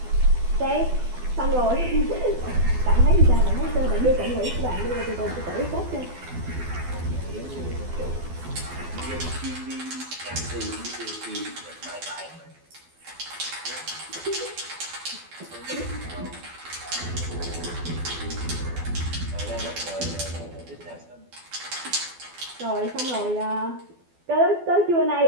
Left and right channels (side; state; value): left; late; 12 ms